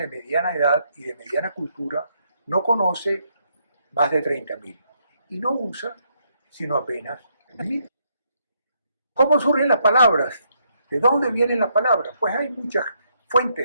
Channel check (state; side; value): inverted; both; correlation -0.74